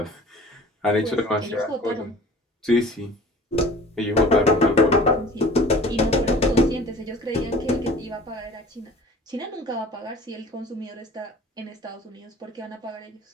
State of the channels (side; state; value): both; normal; correlation 0.45